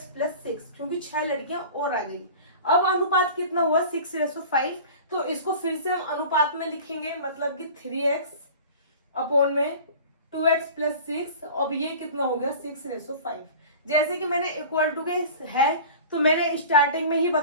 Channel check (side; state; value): both; inverted; correlation -0.39